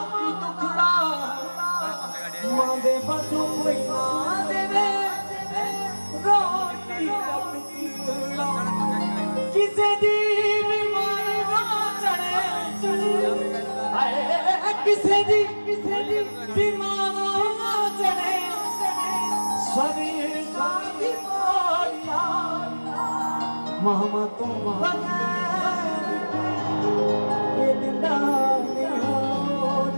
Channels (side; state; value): both; inverted; correlation -1.00